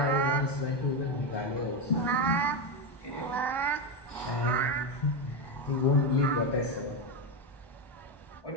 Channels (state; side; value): late; right; 1.2 ms